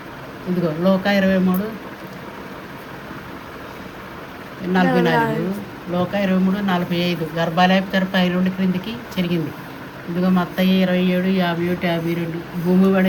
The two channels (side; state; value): both; identical; correlation 1.00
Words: ఇదిగో లోకా 23:44, లోకా 23:45 గర్భాలయపు తెర పై నుండి క్రిందికి చెరిగింది. ఇదిగో మత్తయి 27:51-52 భూమి